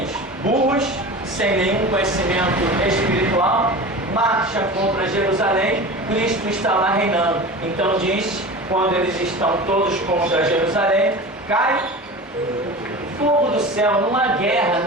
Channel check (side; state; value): both; normal; correlation 0.33